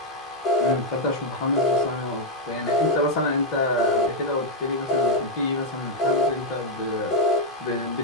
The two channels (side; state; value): both; normal; correlation 0.00